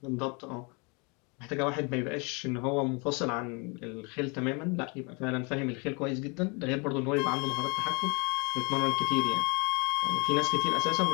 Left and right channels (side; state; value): right; quieter; 31.4 dB